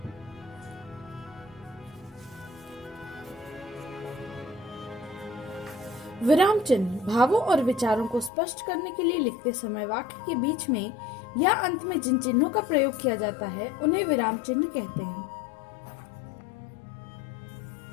विराम चिन्ह भावों और विचारों को स्पष्ट करने के लिए लिखते समय वाक्य के बीच में या अंत में जिन चिन्हों का प्रयोग किया जाता है उन्हें विराम चिन्ह कहते हैं।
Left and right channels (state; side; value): drops out; right; at 8.3 s